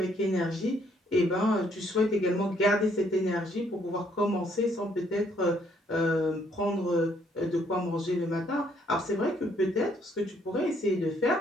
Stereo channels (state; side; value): normal; both; correlation 0.68